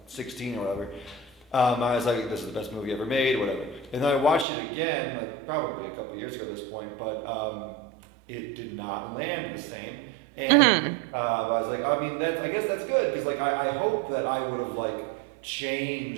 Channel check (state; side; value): drops out; left; at 4.5 s